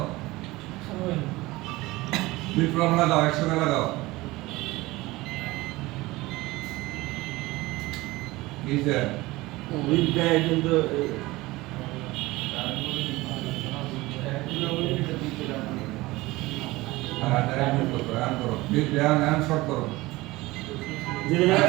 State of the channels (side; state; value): left; quieter; 20.1 dB